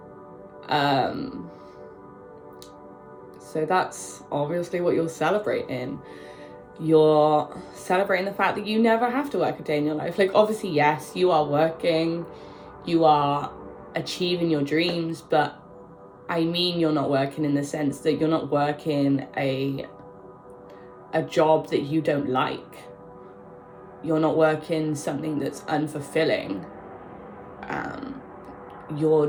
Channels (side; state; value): both; identical; correlation 1.00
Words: So that's obviously what you're celebrating. You're celebrating the fact that you never have to work a day in your life. Like, obviously, yes, you are working, you are achieving your dreams, but I mean, you're not working in the sense that you're not working a job that you don't like. You're not working something that's unfulfilling. You're